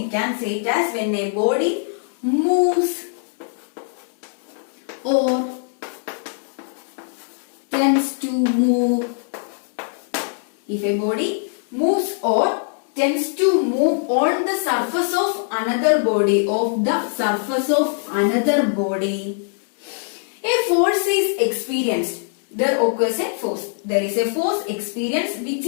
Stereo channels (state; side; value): silent; right; digital silence